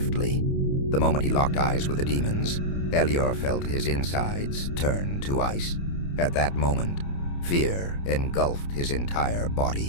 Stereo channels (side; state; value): right; late; 29 ms